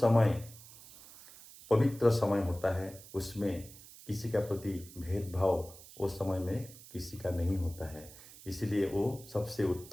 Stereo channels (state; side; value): noise; right; hiss, 19 dB below the sound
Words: पवित्र समय होता है, उसमें किसी का प्रति भेदभाव उस समय में किसी का नहीं होता है, इसलिए वो सबसे